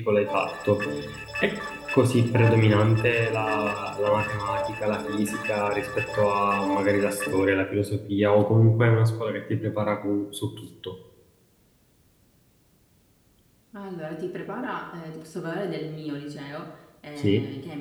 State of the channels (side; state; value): both; identical; correlation 1.00